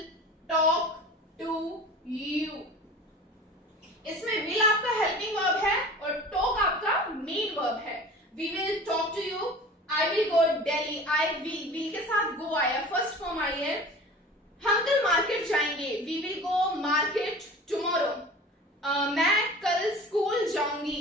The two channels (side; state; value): both; normal; correlation 0.40